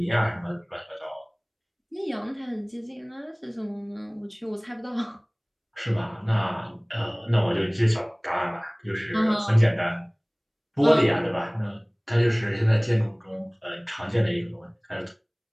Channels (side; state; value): both; identical; correlation 1.00